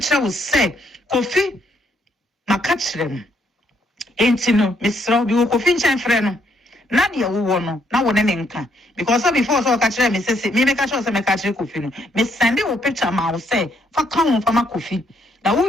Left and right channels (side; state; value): both; normal; correlation 0.72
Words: was say Kofi ma catcher me enti no misro bi Kofi nchan frɛ no na de wo no na wo ne nka because before so catcher me say me catcher say me catcher Kofi no me send wo picture ma wo say fa kan wo fa ma Kofi na